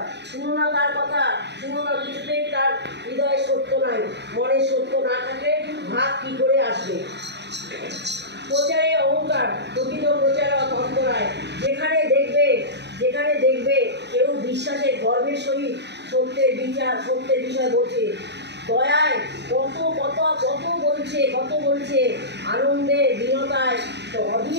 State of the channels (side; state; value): left; late; 0.50 ms